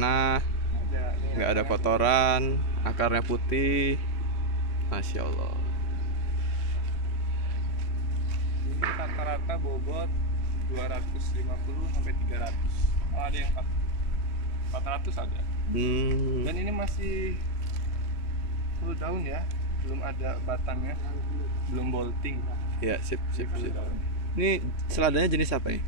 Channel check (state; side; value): late; right; 3.2 ms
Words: nggak ada kotoran, akarnya putih. Masya Allah. Ini rata-rata bobot 250 sampai 300. Oh, ada yang 400 ada. Dan ini masih full daun ya, belum ada batangnya, belum bolting. Ya, sip. Ini seladanya jenis apa ini?